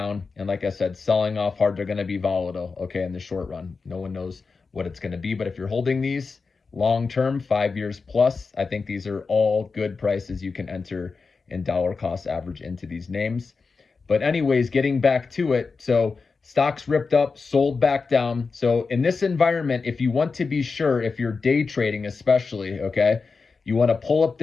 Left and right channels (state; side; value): quieter; right; 4.6 dB